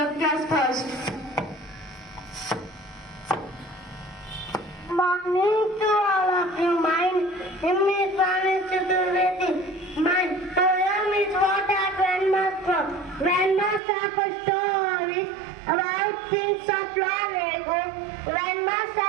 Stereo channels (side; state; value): left; drops out; at 13.8 s